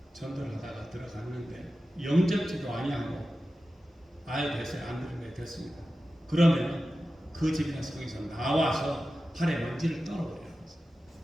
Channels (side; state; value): both; normal; correlation 0.94